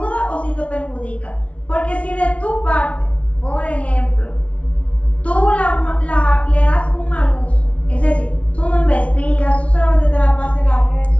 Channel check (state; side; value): late; right; 0.063 ms